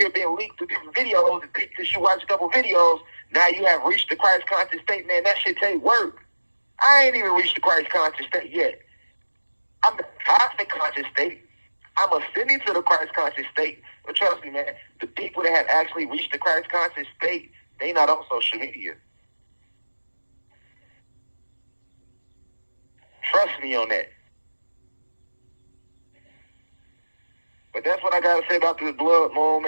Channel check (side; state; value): both; inverted; correlation -1.00